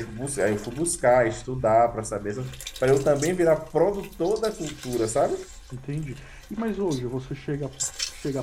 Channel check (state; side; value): identical; both; correlation 1.00